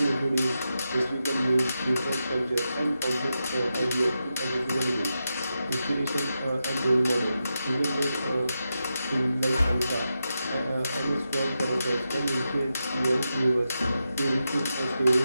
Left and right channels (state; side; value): inverted; both; correlation -0.88